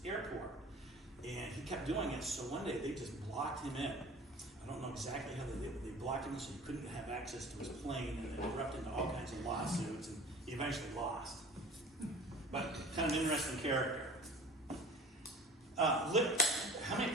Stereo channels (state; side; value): normal; both; correlation 0.43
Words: airport. And he kept doing it, so one day they just blocked him in. I don't know exactly how they did it. They blocked him so he couldn't have access to his plane, and it erupted into all kinds of lawsuits, and he eventually lost. But kind of an interesting character. How many